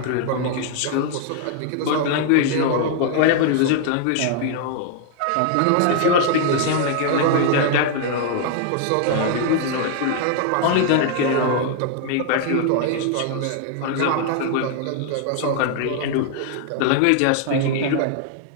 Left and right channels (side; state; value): both; different; correlation 0.00